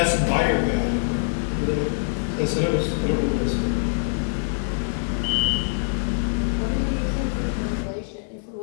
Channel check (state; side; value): silent; right; digital silence